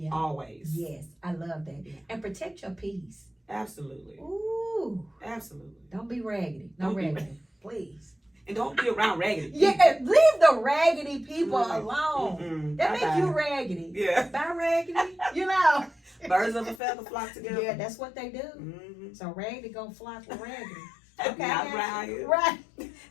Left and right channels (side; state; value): right; drops out; at 16.8 s